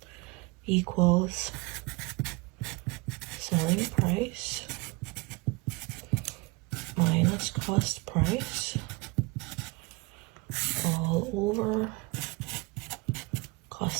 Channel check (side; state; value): left; quieter; 26.2 dB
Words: equals selling price minus cost price all over